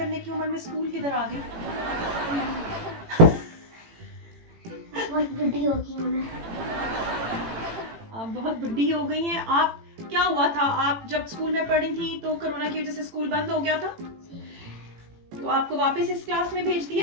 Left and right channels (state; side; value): late; left; 18 ms